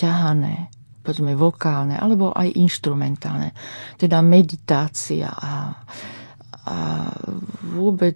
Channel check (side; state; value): both; inverted; correlation -1.00